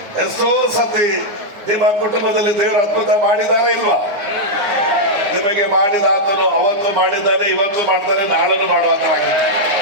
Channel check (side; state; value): left; late; 9.3 ms